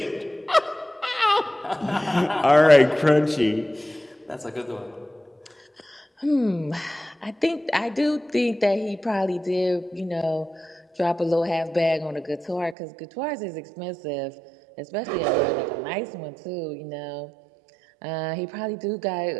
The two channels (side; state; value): left; drops out; at 12.8 s